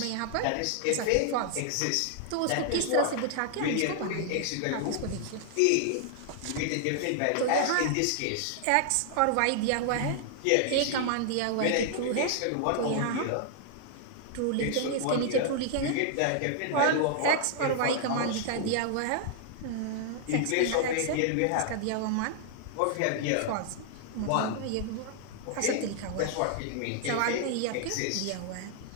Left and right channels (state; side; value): different; both; correlation -0.01